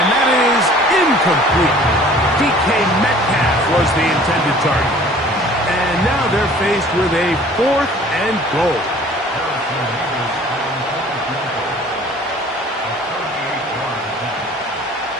that is incomplete. DK Metcalf was the intended target. And now they're faced with a 4th and goal.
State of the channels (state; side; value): normal; both; correlation 0.50